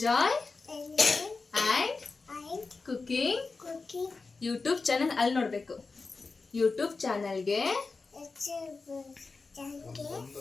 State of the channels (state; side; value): quieter; right; 4.1 dB